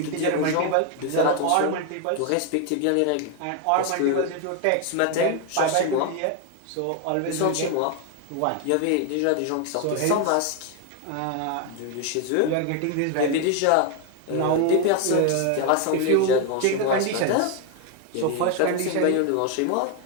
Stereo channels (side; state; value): both; different; correlation 0.01